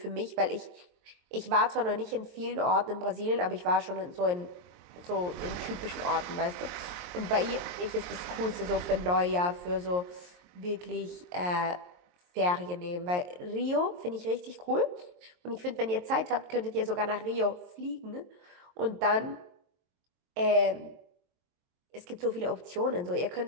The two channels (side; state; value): left; late; 23 ms